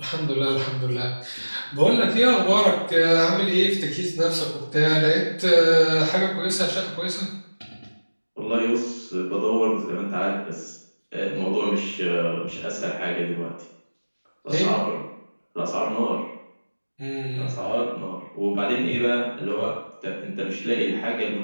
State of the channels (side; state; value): both; inverted; correlation -1.00